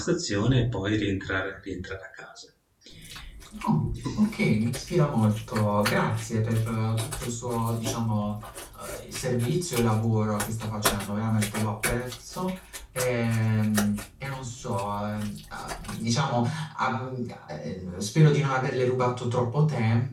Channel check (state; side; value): identical; both; correlation 1.00